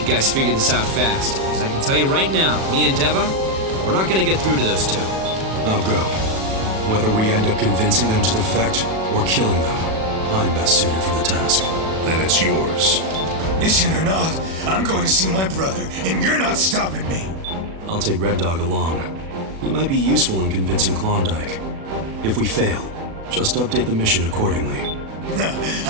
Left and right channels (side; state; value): left; late; 37 ms